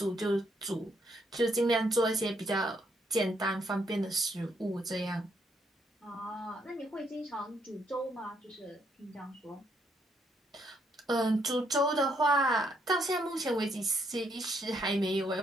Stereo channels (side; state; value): both; normal; correlation 0.73